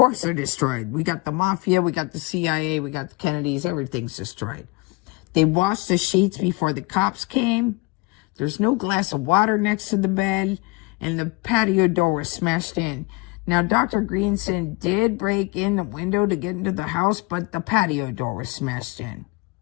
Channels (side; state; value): right; quieter; 25.8 dB